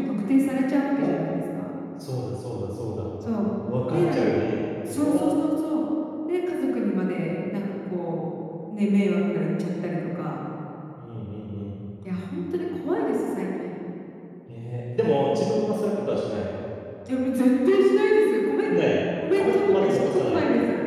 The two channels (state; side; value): identical; both; correlation 1.00